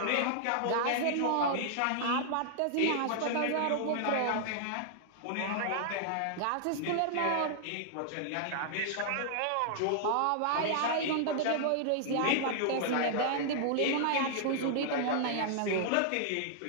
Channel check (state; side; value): different; both; correlation -0.01